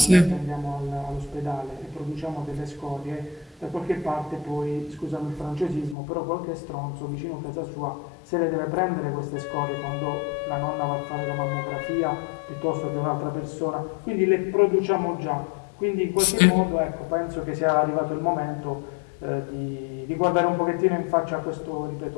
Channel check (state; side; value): drops out; right; at 6.0 s